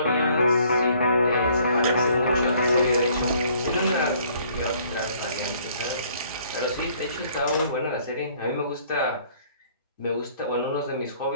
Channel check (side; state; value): both; inverted; correlation -0.60